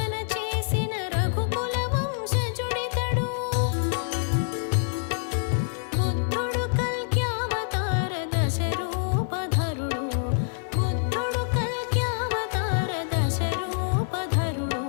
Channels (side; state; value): right; silent; 55 dB below the other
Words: చేసిన రఘుకుల వంశజుడితడు. బుద్ధుడు కల్క్యావతార దశరూపధరుడు. బుద్ధుడు కల్క్యావతార దశరూపధరుడు.